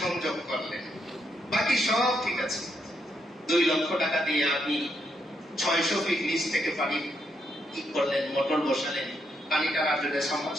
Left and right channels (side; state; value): both; normal; correlation 0.78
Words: সংযোগ করলেন, বাকি সব ঠিক আছে। 2 লক্ষ টাকা দিয়ে আপনি 600 ফিট নিচ থেকে পানি কি করলেন, মোটর বসালেন, পানি টানার জন্য